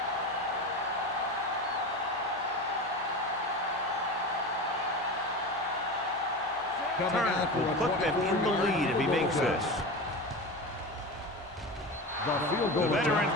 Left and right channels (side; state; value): both; normal; correlation 0.27